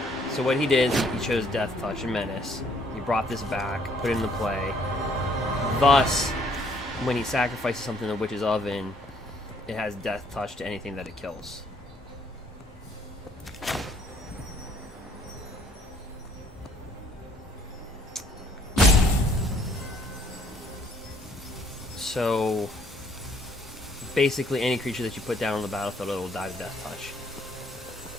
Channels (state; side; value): normal; both; correlation 0.63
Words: So what he did is he chose death touch and menace. He brought this back, put it into play. Thus, when he sacrifices something in the Witch's Oven, it has death touch to anything that it kills. So basically any creature that you put down on the battlefield, it will die to death touch.